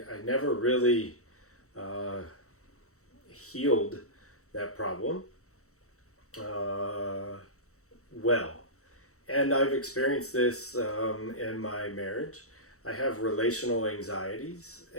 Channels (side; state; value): right; late; 0.64 ms